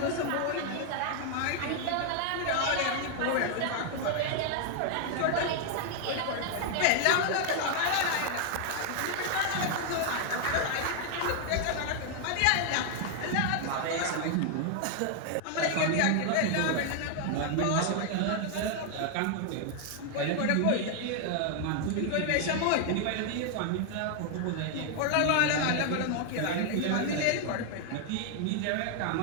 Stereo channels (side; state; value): both; different; correlation 0.00